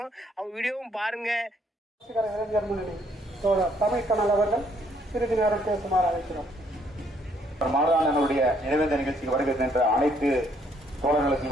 அவங்க வீடியோவும் பாருங்க. இளைஞர் முன்னணி தமிழ் கனல் அவர்கள் சிறிது நேரம் பேசுமாறு அழைக்கிறோம். மாதாளனுடைய நினைவேந்த நிகழ்ச்சிக்கு வருகின்ற அனைத்து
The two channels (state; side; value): normal; both; correlation 0.68